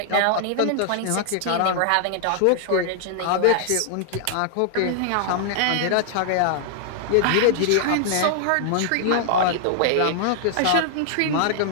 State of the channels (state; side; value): different; both; correlation -0.01